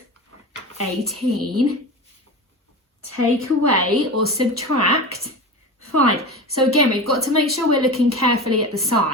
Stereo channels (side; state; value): both; normal; correlation 0.28